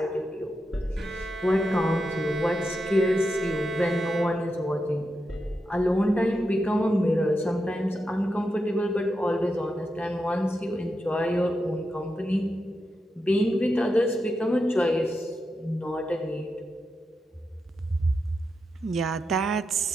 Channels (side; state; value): both; normal; correlation 0.87